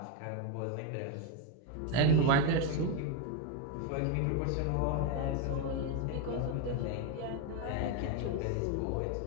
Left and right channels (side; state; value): both; different; correlation 0.02